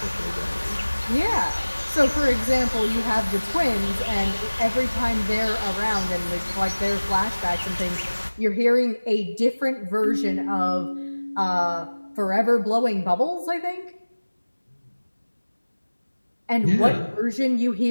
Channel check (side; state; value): both; inverted; correlation -1.00